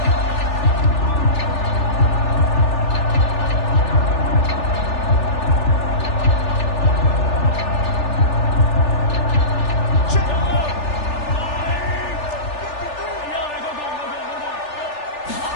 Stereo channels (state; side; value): late; right; 3.4 ms